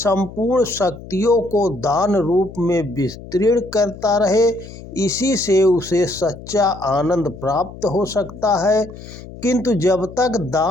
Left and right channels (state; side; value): noise; left; hum, 15 dB below the sound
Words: शक्तियों को दान रूप में विस्तृण करता रहे। इसी से उसे सच्चा आनंद प्राप्त हो सकता है। किंतु जब तक